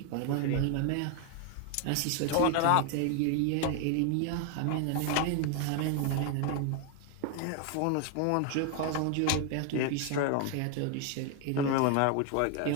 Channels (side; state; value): both; different; correlation 0.01